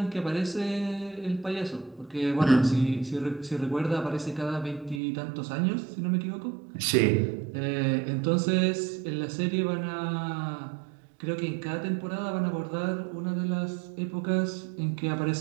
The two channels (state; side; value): drops out; left; at 5.0 s